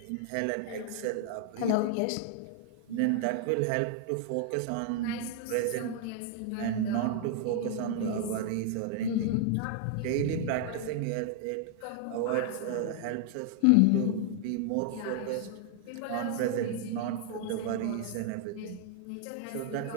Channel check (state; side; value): different; both; correlation 0.00